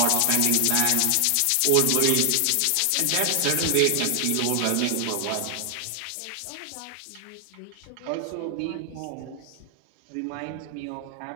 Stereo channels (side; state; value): both; different; correlation 0.00